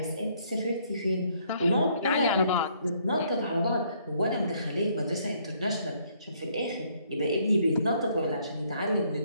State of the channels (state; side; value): inverted; both; correlation -0.67